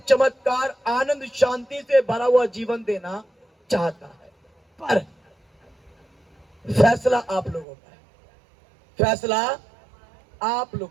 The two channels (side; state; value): left; drops out; at 7.7 s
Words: चमत्कार, आनंद, शांति से भरा हुआ जीवन देना चाहता है। पर फैसला आप लोगों का है, फैसला आप